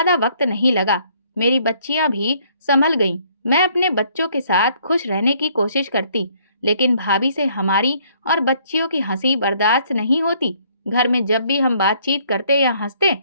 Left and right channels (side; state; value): both; inverted; correlation -0.64